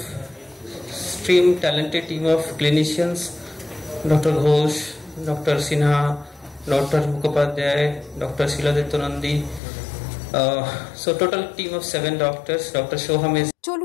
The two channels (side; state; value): right; drops out; at 9.6 s